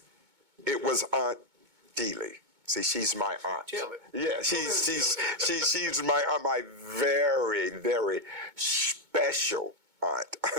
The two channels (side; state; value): left; late; 2.2 ms